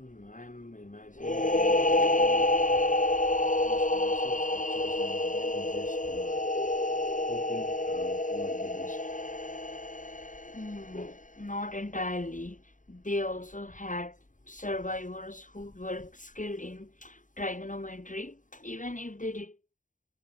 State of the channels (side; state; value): right; late; 0.37 ms